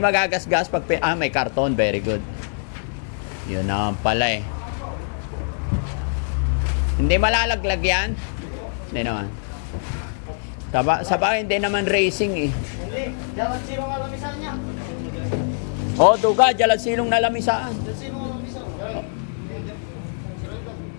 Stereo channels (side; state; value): right; silent; digital silence